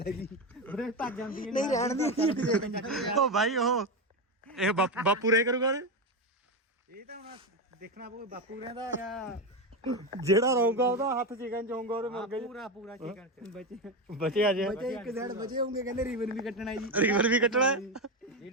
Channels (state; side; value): normal; both; correlation 0.14